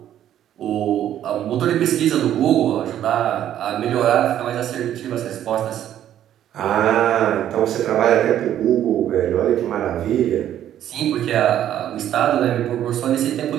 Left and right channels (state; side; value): quieter; left; 11.2 dB